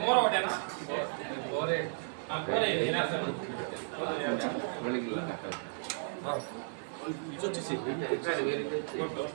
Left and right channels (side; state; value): left; silent; 55 dB below the other